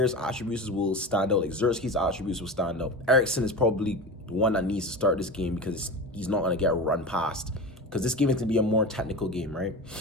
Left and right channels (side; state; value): both; normal; correlation 0.28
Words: attributes will stand out, like Zerski's attributes will stand out. Eriksen is probably the one that needs to start this game because he's not going to get run past. Because this game is going to be a more technical game, right?